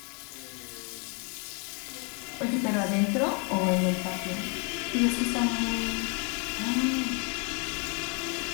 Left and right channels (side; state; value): right; quieter; 34.6 dB